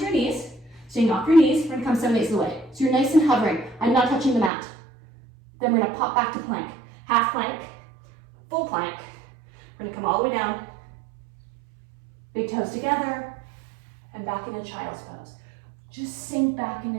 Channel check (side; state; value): left; drops out; at 4.5 s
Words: knees. Staying off your knees, we're going to come 7/8 of the way. So you're nice and hovering. I'm not touching the mat. Then we're going to pop back to plank. Half plank, full plank. We're going to come all the way down. Big toes together. And back into child's pose. Just sink back